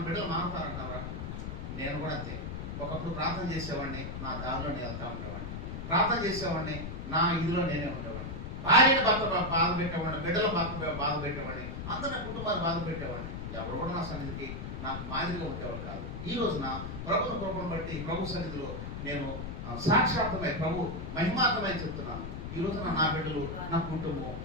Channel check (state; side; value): noise; left; rumble, 6 dB below the sound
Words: బిడ్డలు మారుతారంటారా? నేను కూడా అంతే. ఒకప్పుడు ప్రార్థన చేసేవాడిని, నా దారిలో నేను వెళ్తా ఉండేవాడిని. ప్రార్థన చేసేవాడిని, నా ఇదిలో నేనే ఉండేవాడిని. భార్యను బాధ పెట్టేవాడిని, బిడ్డలు బాధ పెట్టేవాడిని, అందరూ నా కుటుంబాన్ని బాధ పెట్టేవాడిని. ఎవరు కూడా నా సన్నిధికి నాకు మాదిరిగా ఉండేవాడు కాదు. ఈ రోజున ప్రభుత్వ కృపను బట్టి ప్రభు సన్నిధిలో నేను సాక్షాత్మై, ప్రభు మహిమాత్మై చెప్తున్నాను. ఈ రోజున నా బిడ్డలు, నా కుటుంబం,